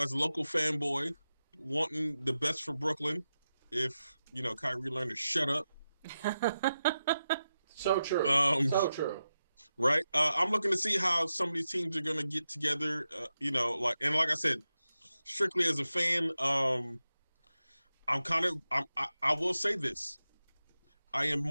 a local fanboy, wanting the best for Brooklyn, if Kyrie learned to shut up. So true. So true. Right. I'm looking to see how some of these teams are going to get together. Like I said, strictly as a fan, I will say this. I am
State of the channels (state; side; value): inverted; both; correlation -0.90